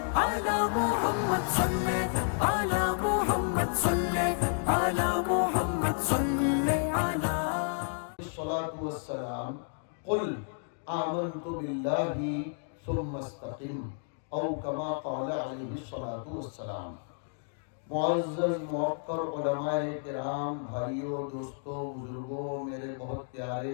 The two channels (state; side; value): silent; right; digital silence